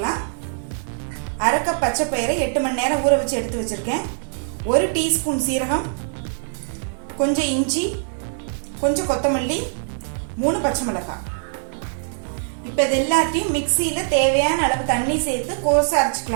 அரை கப் பச்சை பயிரை 8 மணி நேரம் ஊற வச்சு எடுத்து வச்சிருக்கேன். 1 டீஸ்பூன் சீரகம், கொஞ்சம் இஞ்சி, கொஞ்சம் கொத்தமல்லி, 3 பச்சை மிளகாய். இப்போ இது எல்லாத்தையும் மிக்சியில் தேவையான அளவு தண்ணி சேர்த்து கோர்ஸாக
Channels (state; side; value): silent; left; 64 dB below the other